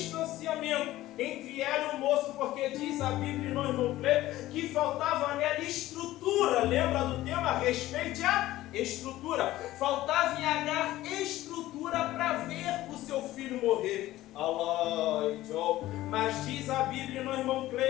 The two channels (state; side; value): quieter; right; 15.8 dB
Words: entre ela e o moço, porque diz a Bíblia, não irmão Cleito, que faltava nela estrutura. Lembra do tema? Respeite a estrutura. Faltava em Agar estrutura para ver o seu filho morrer. Mas diz a Bíblia, não irmão